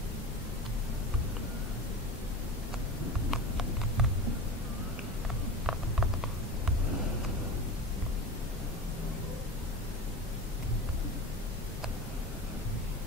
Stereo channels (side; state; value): both; normal; correlation 0.29